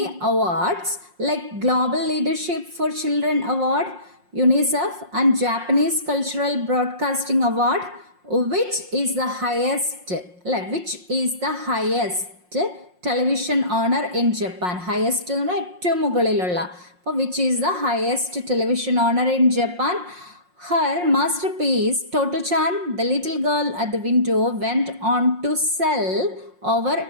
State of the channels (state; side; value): late; left; 5.6 ms